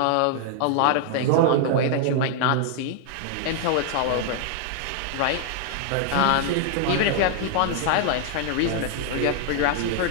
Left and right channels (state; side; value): different; both; correlation 0.00